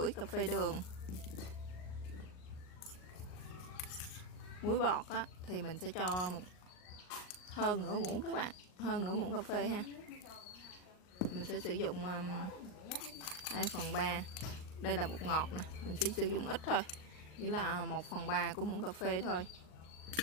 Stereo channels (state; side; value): late; right; 38 ms